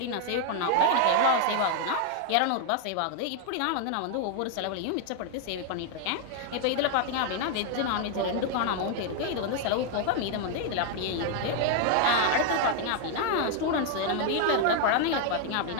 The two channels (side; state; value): both; different; correlation 0.00